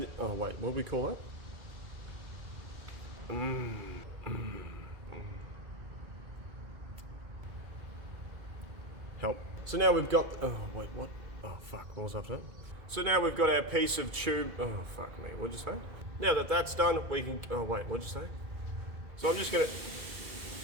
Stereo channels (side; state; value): left; late; 2.3 ms